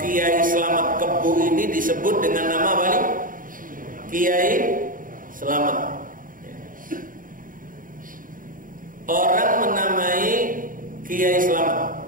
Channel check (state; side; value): late; left; 0.40 ms